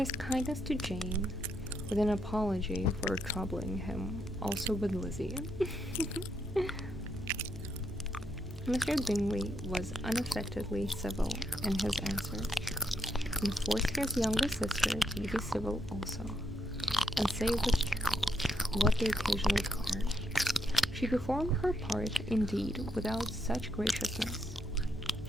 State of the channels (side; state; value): both; normal; correlation 0.78